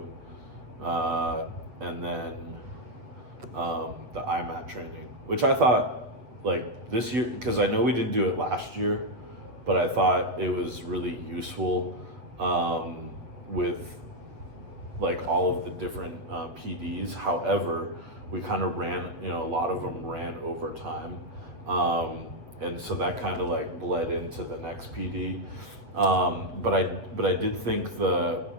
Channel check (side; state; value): left; late; 8.0 ms